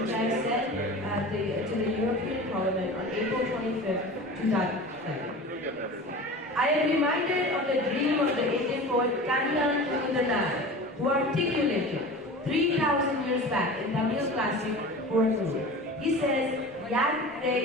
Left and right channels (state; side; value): normal; both; correlation 0.35